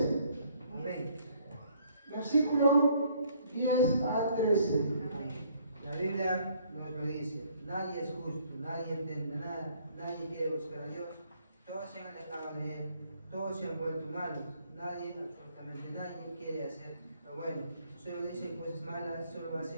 Amén. Versículo 10 al 13. La Biblia nos lo dice: nadie es justo, nadie entiende nada, nadie quiere buscar a Dios, todos se han alejado de Él, todos se han vuelto malos, nadie, absolutamente nadie, quiere hacer lo bueno, solo dicen cosas malas,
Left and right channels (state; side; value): inverted; both; correlation -0.64